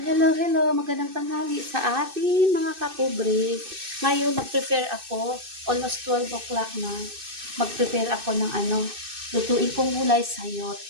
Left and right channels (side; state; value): left; late; 2.6 ms